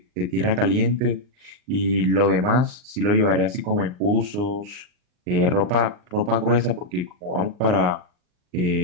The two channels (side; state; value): left; late; 39 ms